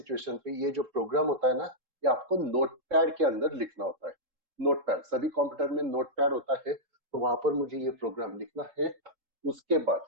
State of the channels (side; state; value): left; late; 3.7 ms